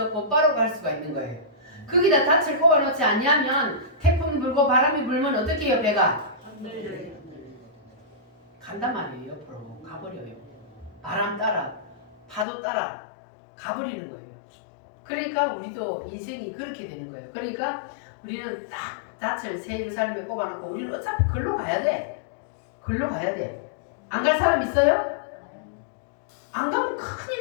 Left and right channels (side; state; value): right; drops out; at 12.5 s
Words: 곧바로 갈 수가 있는 거예요. 거기다 닻을 꼽아놓지 않냐면 태풍 불고 바람이 불면 어떻게 해요? 배가? 간단 말이에요. 옆으로 가버려요. 바람 따라 파도 따라 가버리는 거예요. 그러니까 우리도 인생이 그렇게 되는 거예요. 그러니까 우리는 딱 닻을 새 예루살렘에 꼽아놓고 우리는 어차피 걸로 가야 돼. 걸로 가야 돼. 안 갈 사람 있어요? 안 가면